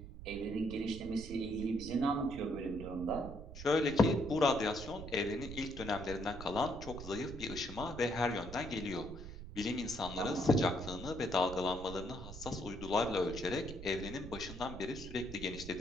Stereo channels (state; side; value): noise; right; rumble, 11 dB below the sound